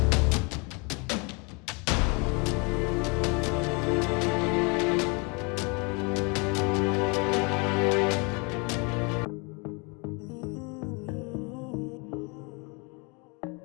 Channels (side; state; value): right; quieter; 31.4 dB